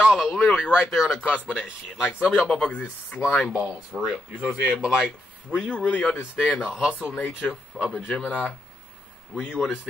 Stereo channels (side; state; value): both; normal; correlation 0.81